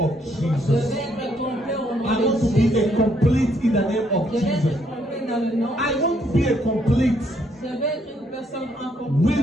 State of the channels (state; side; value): normal; both; correlation 0.71